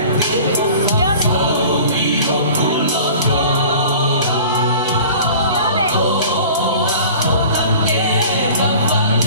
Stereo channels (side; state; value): both; inverted; correlation -0.43